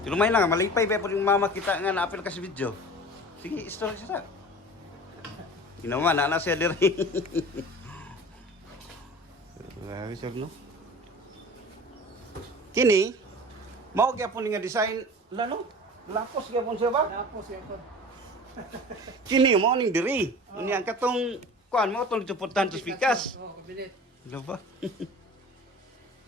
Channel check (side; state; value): both; normal; correlation 0.39